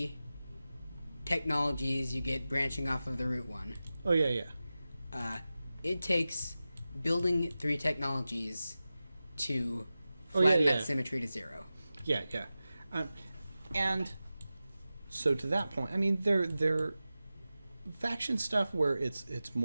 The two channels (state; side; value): inverted; both; correlation -0.95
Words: technologies you get branching off of the root one. Oh, yeah. It takes building 3 technologies to Oh, yeah, flatten yeah. that symmetry to 0. Yeah. And so to that point, I mean, they're faction stuff where it's